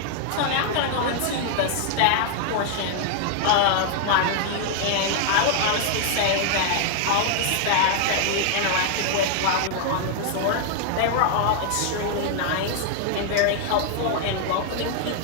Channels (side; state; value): both; different; correlation 0.00